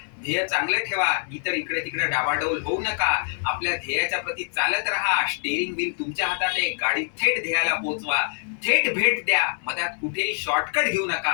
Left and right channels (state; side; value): silent; right; digital silence